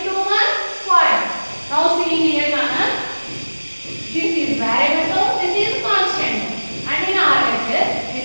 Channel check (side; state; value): both; inverted; correlation -1.00